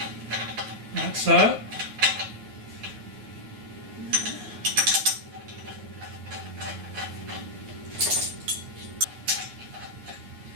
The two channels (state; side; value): late; left; 9.6 ms